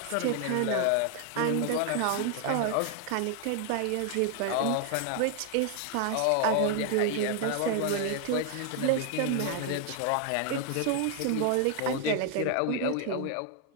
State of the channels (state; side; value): different; both; correlation 0.00